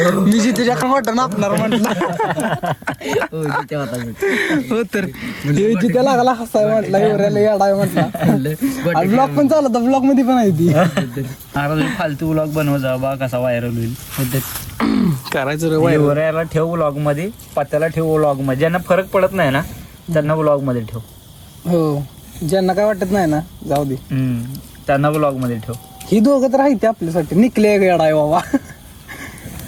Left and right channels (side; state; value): both; identical; correlation 1.00